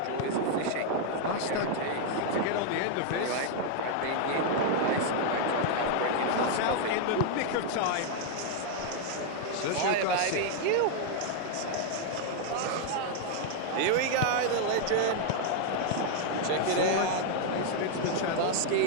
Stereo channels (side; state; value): both; different; correlation 0.00